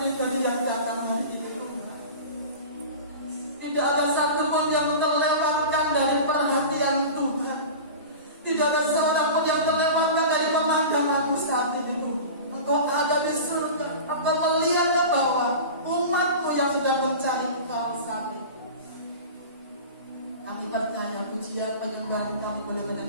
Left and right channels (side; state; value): both; inverted; correlation -0.33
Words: yang datang hari ini Tuhan. Tidak ada satu pun yang terlewatkan dari perhatian Tuhan. Tidak ada seorang pun yang terlewatkan dari pemandangan saat ini Tuhan. Engkau ada di surga. Engkau melihat ke bawah umat-Mu yang sudah mencari Engkau saat ini. Kami percaya pujian penyembahan kami boleh